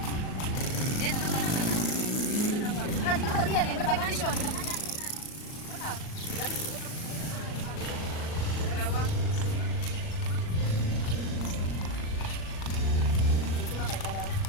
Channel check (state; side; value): late; right; 38 ms